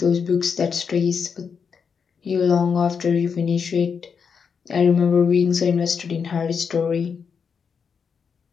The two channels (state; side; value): quieter; right; 6.2 dB